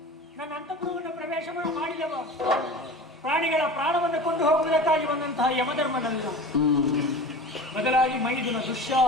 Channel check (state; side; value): normal; both; correlation 0.35